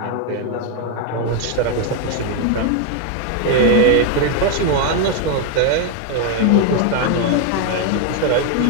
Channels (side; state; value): both; different; correlation 0.01